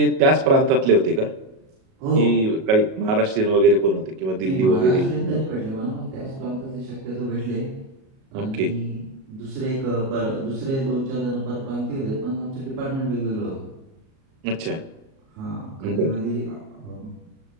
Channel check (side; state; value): left; late; 37 ms